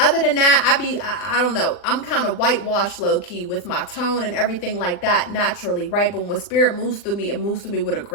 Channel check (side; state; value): right; late; 40 ms